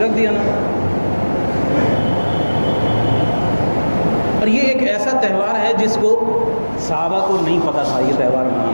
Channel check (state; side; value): inverted; both; correlation -1.00